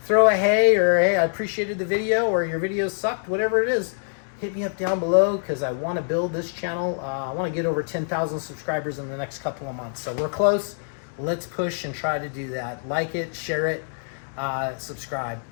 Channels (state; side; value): silent; right; digital silence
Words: throw a hey, or hey, I appreciated the video, or your video sucked, whatever it is. Hit me up down below, because I want to build this channel. I want to get over 10,000 subscribers in the next couple of months, so we're close. Let's push and try to do that. Like it, share it. subscribe.